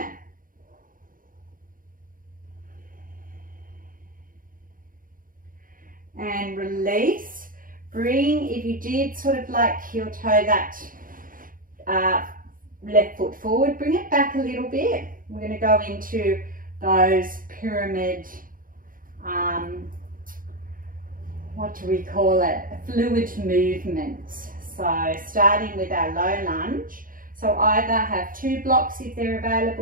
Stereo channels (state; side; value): late; left; 0.40 ms